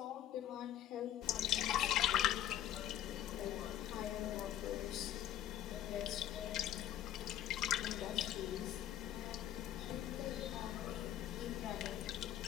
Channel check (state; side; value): quieter; right; 11.6 dB